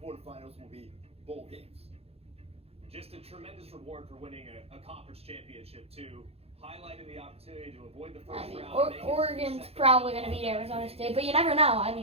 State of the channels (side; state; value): left; late; 0.29 ms